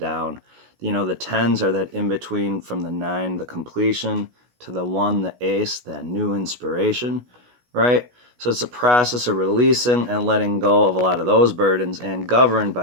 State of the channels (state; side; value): late; left; 16 ms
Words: The 10s are that in between from the 9, the completion, to the 1, the ace, that new inspiration, right? So it's a process of releasing and letting go of a lot of those burdens, and governed